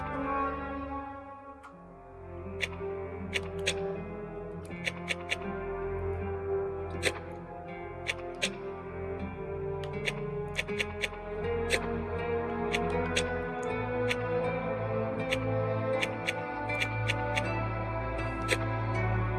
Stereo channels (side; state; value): both; identical; correlation 1.00